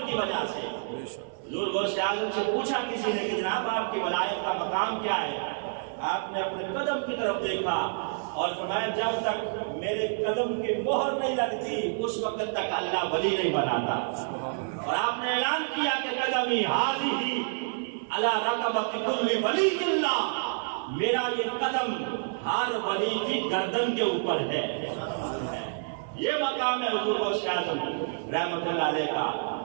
کی وجہ سے۔ حضور غوث اعظم سے پوچھا کسی نے کہ جناب آپ کی ولایت کا مقام کیا ہے؟ آپ نے اپنے قدم کی طرف دیکھا اور فرمایا جب تک میرے قدم کی مہر نہیں لگتی اس وقت تک اللہ ولی نہیں بناتا۔ اور آپ نے اعلان کیا کہ قدمی حاضی علی رقبۃ کل ولی اللہ، میرا یہ قدم ہر ولی کی گردن کے اوپر ہے۔ یہ مقام ہے حضور غوث اعظم رحمت اللہ علیہ کا۔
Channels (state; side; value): silent; left; 59 dB below the other